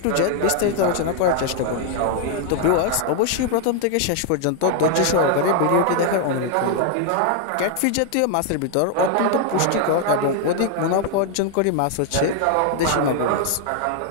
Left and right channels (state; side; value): different; both; correlation 0.00